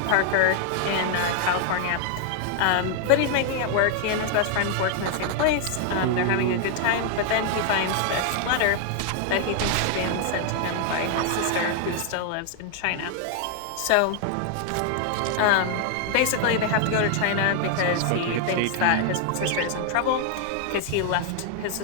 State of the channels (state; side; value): different; both; correlation 0.00